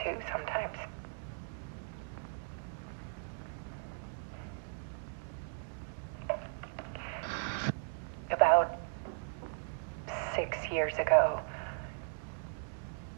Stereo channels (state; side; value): silent; left; digital silence